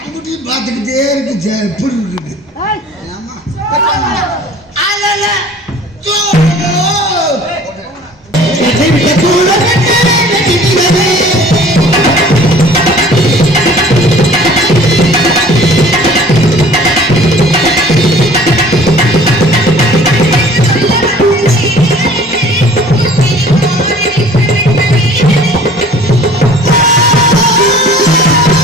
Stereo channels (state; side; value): normal; both; correlation 0.49